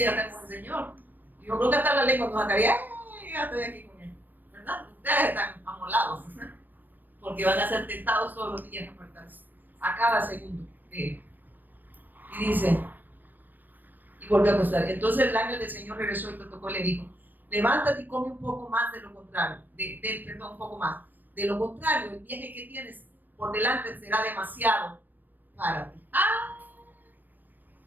ya está con el Señor. Yo creo que hasta la lengua nos sacaría, ya estoy aquí con él, ¿verdad? Ustedes están amolados, porque van a ser tentados todos los días a apartarse, a cada segundo. Y dice, y volvió a acostar. Entonces el ángel del Señor regresó y lo tocó y le dijo, levántate y come un poco más de lo contrario, un poco más. De lo contrario, el viaje que tienes por delante será demasiado para ti.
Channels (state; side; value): late; left; 0.090 ms